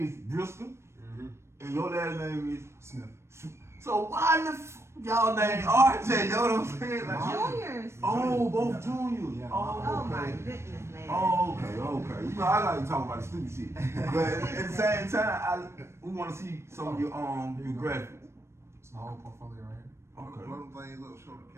is Bristol, and your last name is Smith. So, why the y'all name RJ? You know what I'm saying? Like, Juniors. oh, both juniors. Yeah. Oh my okay. goodness, man. Oh, okay. You know, I like to talk about the stupid shit, but at the same time, we want to see some of your graphics. It's my whole portfolio right here. Okay. Blow them things up, show the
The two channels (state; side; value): late; left; 0.13 ms